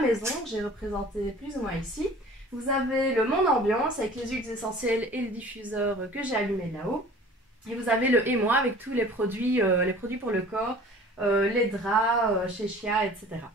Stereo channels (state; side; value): normal; both; correlation 0.46